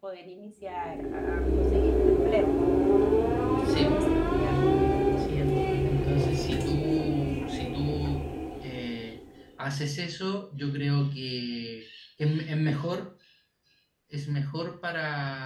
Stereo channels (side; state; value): both; identical; correlation 1.00